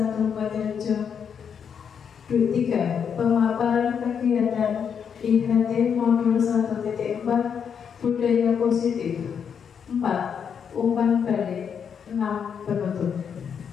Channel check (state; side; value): quieter; right; 7.3 dB